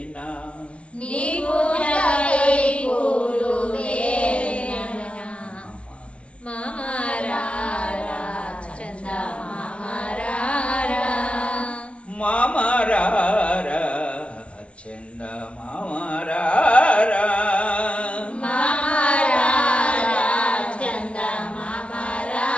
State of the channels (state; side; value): late; right; 0.058 ms